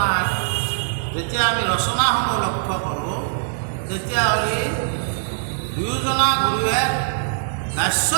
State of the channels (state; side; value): silent; left; 64 dB below the other